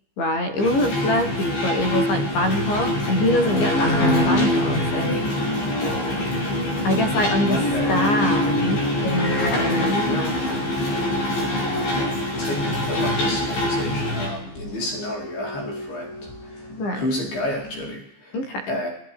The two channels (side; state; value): right; late; 15 ms